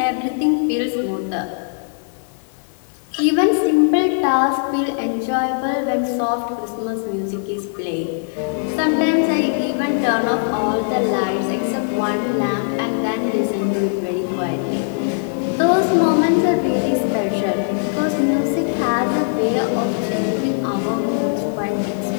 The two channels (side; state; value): right; silent; digital silence